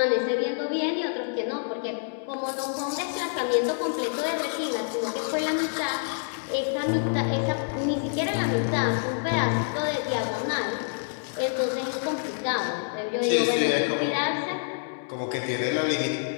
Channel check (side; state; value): right; silent; digital silence